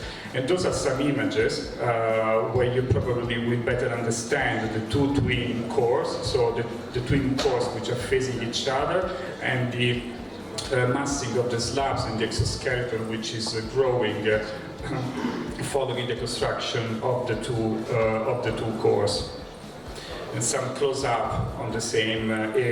And those are some images where you probably will better understand the two twin cores, so the twin cores which are facing each other, and the massing of the slabs in the exoskeleton, which is growing following the construction of the two cores. And some close-up on the same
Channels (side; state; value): both; identical; correlation 1.00